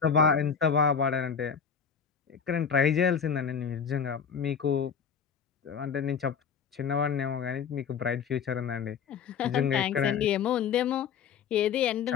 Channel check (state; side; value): quieter; right; 6.8 dB